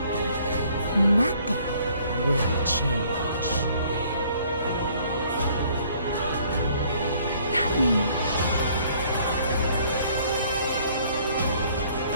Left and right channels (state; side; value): inverted; both; correlation -0.60